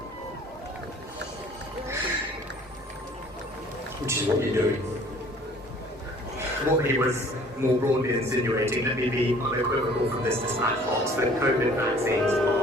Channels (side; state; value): both; normal; correlation 0.53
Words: Which is what you're doing. What he was more broadly insinuating, let me be unequivocal from this dispatch box, that COVID vaccines